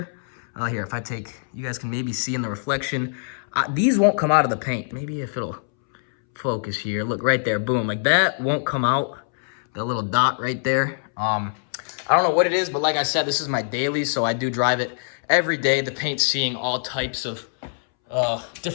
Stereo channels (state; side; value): silent; right; 63 dB below the other